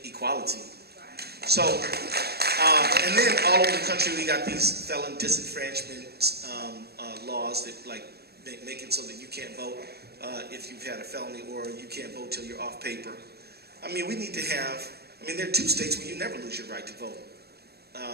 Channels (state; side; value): late; left; 0.47 ms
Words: equality. So, and then all over the country we got these felon disenfranchisement laws that make it so that you can't vote if you've had a felony, or you can't vote till you're off paper. I mean, we need to have, there are 2 states where you never lose your right to vote,